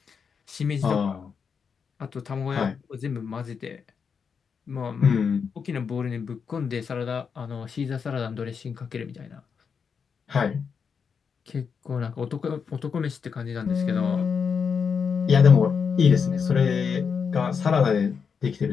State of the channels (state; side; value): quieter; right; 6.2 dB